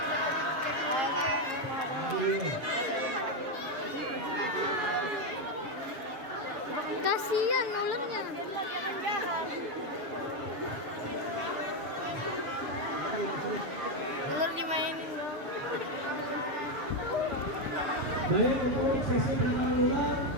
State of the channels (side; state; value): left; late; 7.2 ms